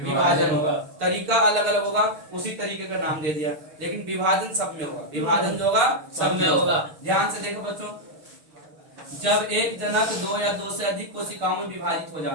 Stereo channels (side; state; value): left; late; 6.7 ms